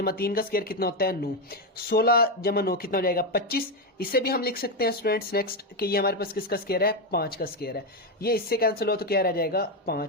3 का स्क्वायर कितना होता है 9, 16 जमा 9 कितना हो जाएगा 25। इसे भी हम लिख सकते हैं स्टूडेंट्स नेक्स्ट कि ये हमारे पास किसका स्क्वायर है 5 का स्क्वायर है, ये इससे कैंसिल हो तो क्या रह जाएगा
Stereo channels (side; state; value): both; normal; correlation 0.08